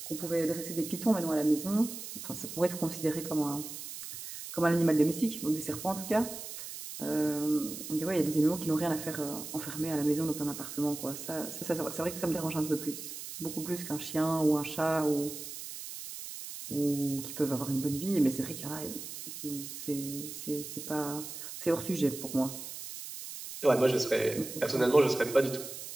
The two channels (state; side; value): noise; right; hiss, 9 dB below the sound